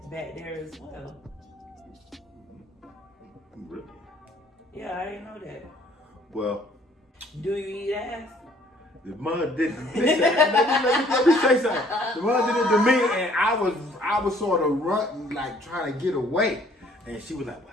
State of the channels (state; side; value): normal; both; correlation 0.59